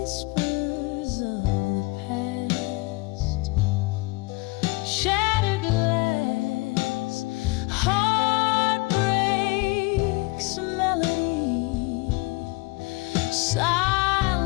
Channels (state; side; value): quieter; right; 24.5 dB